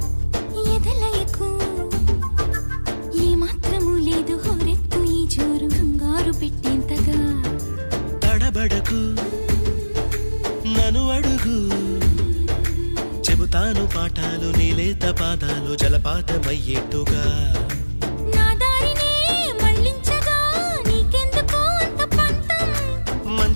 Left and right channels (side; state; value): both; inverted; correlation -1.00